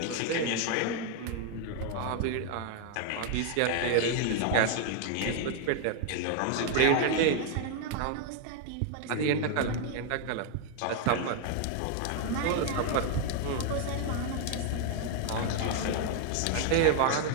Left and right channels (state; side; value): different; both; correlation 0.00